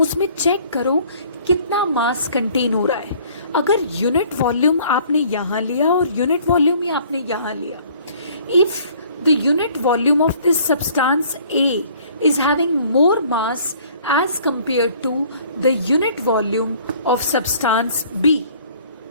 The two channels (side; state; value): both; inverted; correlation -0.55